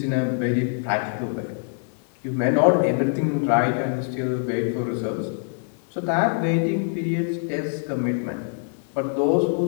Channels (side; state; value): right; silent; digital silence